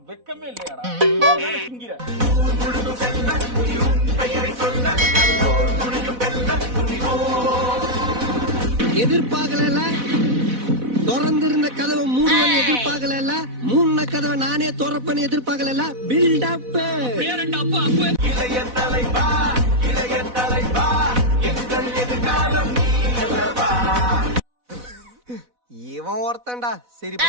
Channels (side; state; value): left; late; 4.1 ms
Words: வெக்கமே இல்லையாடா? எதிர்பார்க்கல, திறந்திருந்த கதவை மூடுவன்னு எதிர்பார்க்கல, மூணு கதவை நானே திறப்பேன்னு எதிர்பார்க்கல. பில்டப் இளைய தலைவா, இளைய தலைவா, எங்கள் எதிர்காலம் நீ அல்லவா. இவன் ஒருத்தன்டா சரி